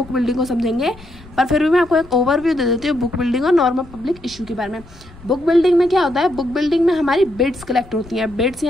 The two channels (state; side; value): noise; left; rumble, 21 dB below the sound